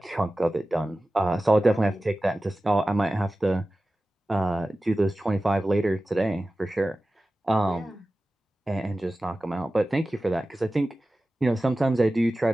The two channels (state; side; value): normal; both; correlation 0.96